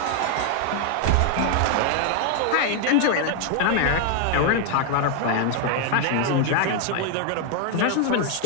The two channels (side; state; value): both; different; correlation 0.00